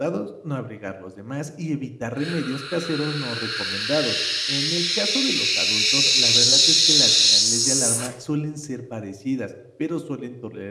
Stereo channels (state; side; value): identical; both; correlation 1.00